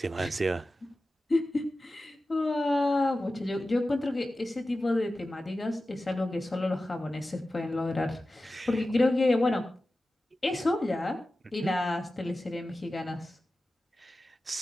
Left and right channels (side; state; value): both; normal; correlation 0.94